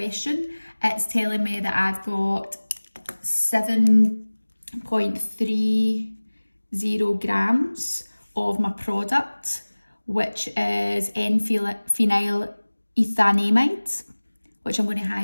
It's telling me that I've got 7.30 grams of my product, which is N-phenylethanamide, which I'm going to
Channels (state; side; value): inverted; both; correlation -1.00